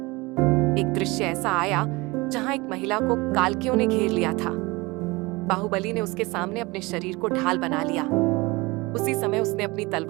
एक दृश्य ऐसा आया जहां एक महिला को कालकियों ने घेर लिया था। बाहुबली ने उसके सामने अपने शरीर को ढाल बना लिया। उसी समय उसने अपनी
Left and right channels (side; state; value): left; quieter; 23.6 dB